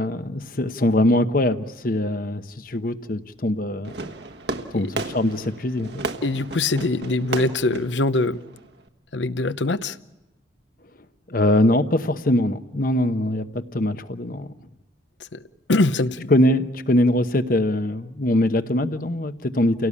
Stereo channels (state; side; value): normal; both; correlation 0.57